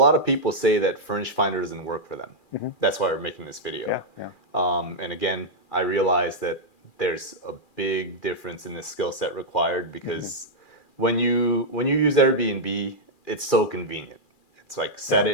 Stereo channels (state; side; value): late; right; 2.4 ms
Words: of people say that Furnished Finder doesn't work for them. That's why we're making this video. And again, I realize that there's a big difference in the skill set required because when you use Airbnb, it's so convenient. It's like set